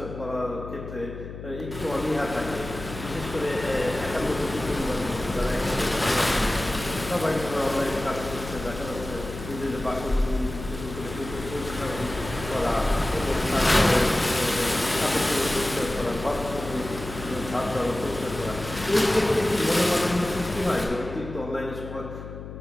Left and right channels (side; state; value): left; noise; hum, 11 dB below the sound